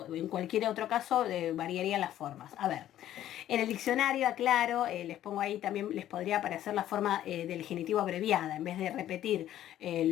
En cualquier otro caso variarían las formas. A ver, en el diccionario, aclaro, les pongo ahí también, les podría aparecer la forma del genitivo abreviada. En vez de repetir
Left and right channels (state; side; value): quieter; right; 12.3 dB